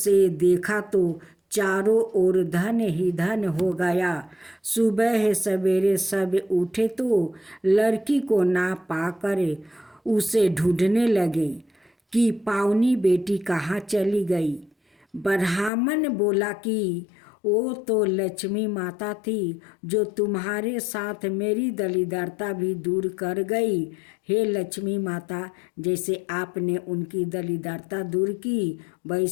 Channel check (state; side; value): drops out; right; at 15.7 s